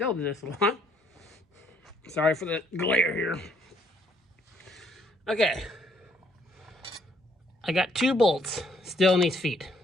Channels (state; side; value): normal; both; correlation 0.66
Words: do this a lot. Sorry for the glare here. Okay. I got 2 bolts still in these feet.